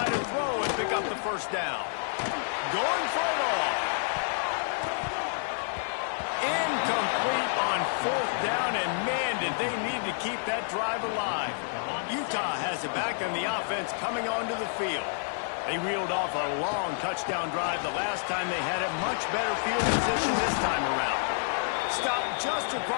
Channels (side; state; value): right; silent; 59 dB below the other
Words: to throw and pick up the first down. Going for it all. Incomplete on fourth down, and man, did they need to keep that drive alive. Utah has it back on the offense coming onto the field. They reeled off a long touchdown drive the last time. They had a much better field position this time around. Stopped just